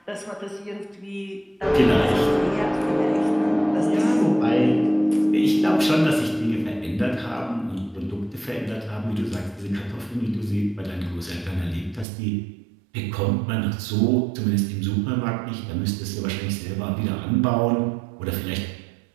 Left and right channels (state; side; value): drops out; left; at 12.1 s